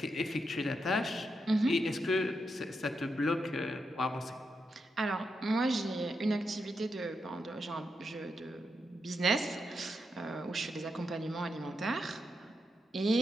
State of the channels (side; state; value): both; normal; correlation 0.84